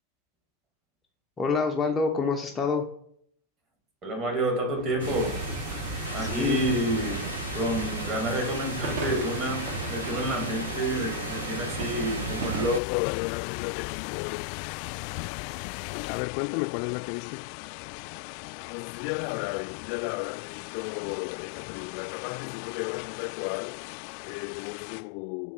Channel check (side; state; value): right; drops out; at 12.8 s